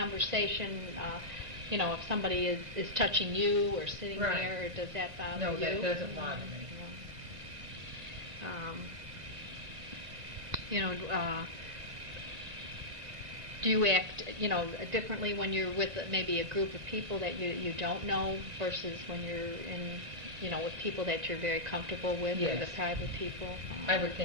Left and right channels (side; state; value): left; late; 1.5 ms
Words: If somebody is touching you or sitting there, does that bother you? No, that doesn't bother me. Do you act, differently when you're with maybe a group of people that you don't know versus when you're in, with people that you're very comfortable with, or the private people? I would